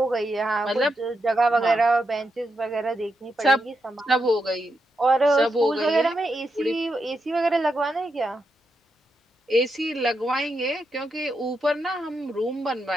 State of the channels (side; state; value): both; normal; correlation 0.84